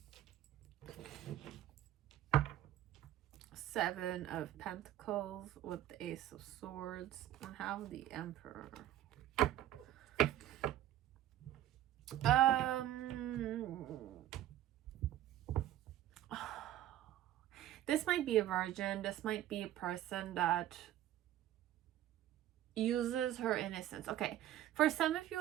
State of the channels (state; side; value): quieter; left; 12.6 dB